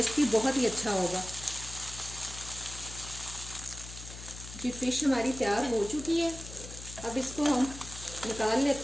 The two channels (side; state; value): left; noise; hum, 13 dB below the sound